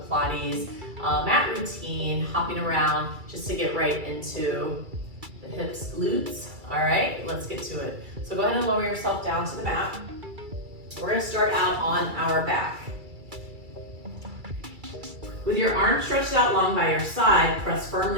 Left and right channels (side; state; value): left; late; 2.3 ms